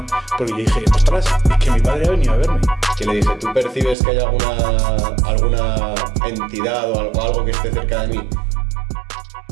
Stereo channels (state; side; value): drops out; left; at 4.0 s